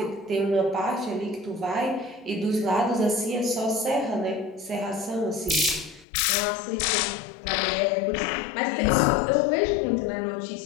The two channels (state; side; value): drops out; right; at 6.1 s